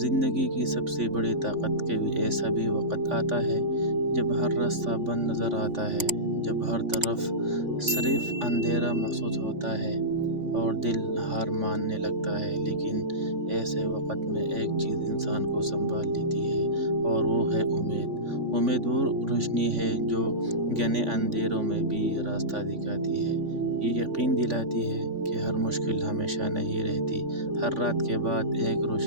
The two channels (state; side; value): late; left; 3.5 ms